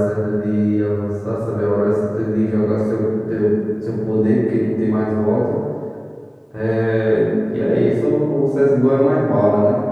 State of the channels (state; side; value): identical; both; correlation 1.00